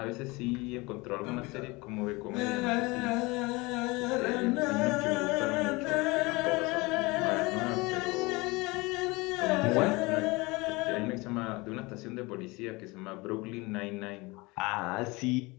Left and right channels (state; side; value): quieter; right; 24.2 dB